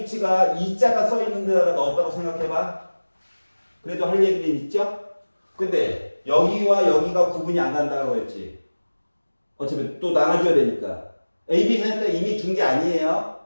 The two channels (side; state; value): both; inverted; correlation -1.00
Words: 2자가 써 있는 데다가 넣었다고 생각해봐. 그래도 할 얘기는 있죠? 근데 여기와 여기가 구분이 안 간다고 했지. 어차피 또 나눠줘야 되니까. A, B 센터 이미 준 게 아니에요.